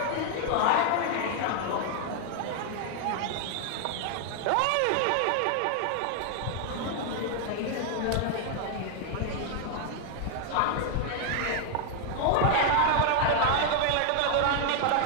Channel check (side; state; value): both; different; correlation 0.00